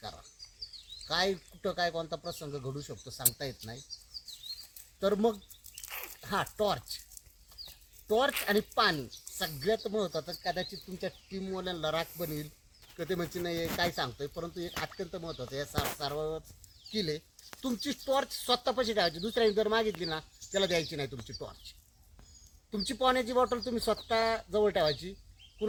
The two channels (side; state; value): both; identical; correlation 1.00